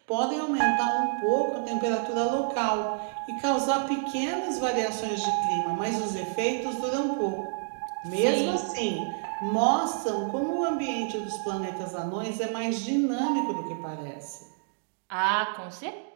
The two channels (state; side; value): silent; left; digital silence